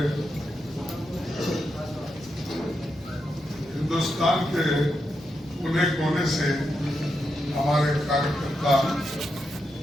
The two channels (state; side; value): normal; both; correlation 0.85